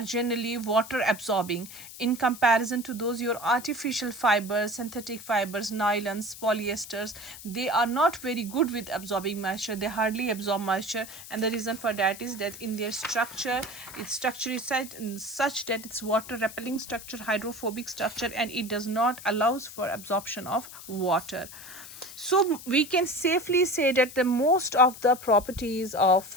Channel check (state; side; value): noise; left; hiss, 14 dB below the sound